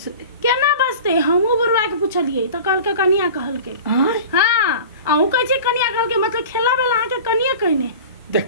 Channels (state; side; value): inverted; both; correlation -0.37